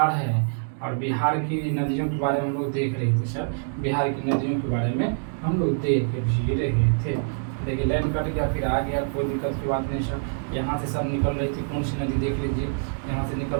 है। और बिहार की नदियों के बारे में हम लोग देख रहे थे सर, बिहार की नदियों के बारे में हम लोग देख के भी रहे थे। देखिए लाइन कट गया, फिर आ गया, कोई दिक्कत की बात नहीं सर। यहाँ से सब निकल रही थी, कौन सी नदी देख लीजिए, यहाँ से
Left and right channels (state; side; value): silent; left; digital silence